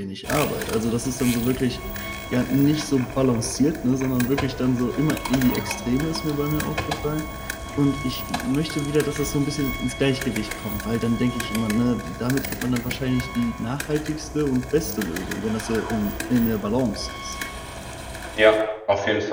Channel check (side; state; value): both; identical; correlation 1.00